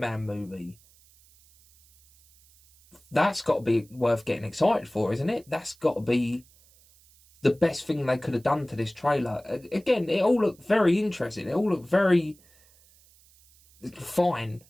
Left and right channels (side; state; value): right; noise; hiss, 29 dB below the sound